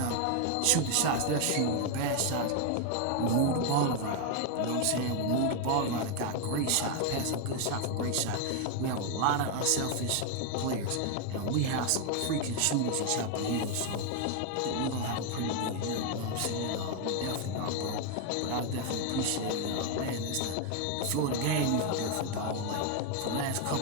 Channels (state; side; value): different; both; correlation 0.00